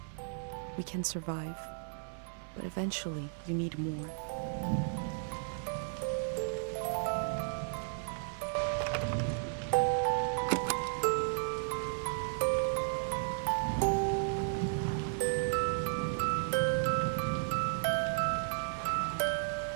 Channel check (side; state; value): left; silent; 55 dB below the other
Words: We can survive, but eventually you need more.